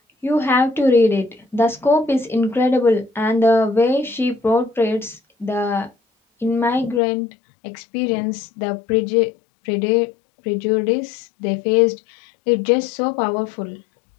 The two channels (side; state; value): right; drops out; at 7.0 s